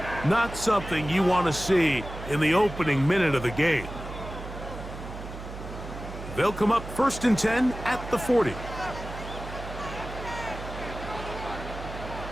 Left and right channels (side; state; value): right; noise; hum, 11 dB below the sound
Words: Not something you want to see in the opening minute of the game. They'll come up 1st and 10 at the 40.